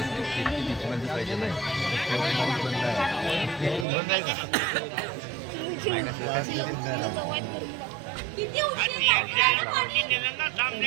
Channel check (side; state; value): left; drops out; at 3.9 s